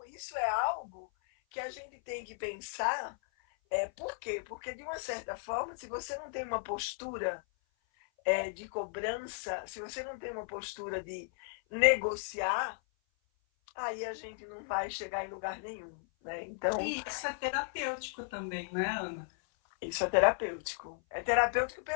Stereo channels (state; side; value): silent; right; 54 dB below the other